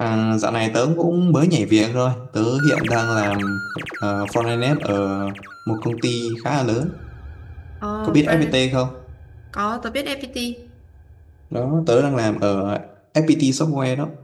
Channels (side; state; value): both; identical; correlation 1.00